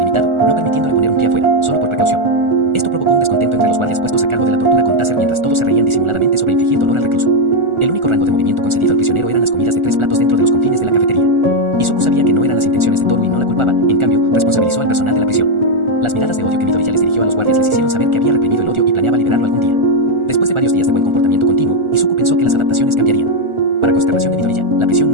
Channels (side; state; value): left; late; 1.4 ms